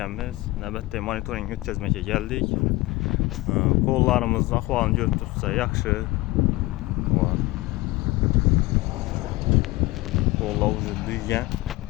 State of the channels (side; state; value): right; quieter; 20.0 dB